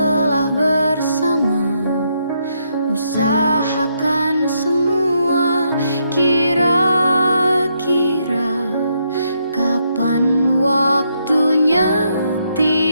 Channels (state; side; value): inverted; both; correlation -0.77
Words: bersama, usahakan semua. Kira-kira kapan waktunya